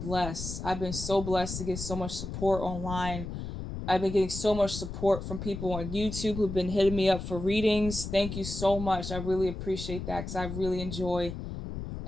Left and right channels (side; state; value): left; noise; rumble, 7 dB below the sound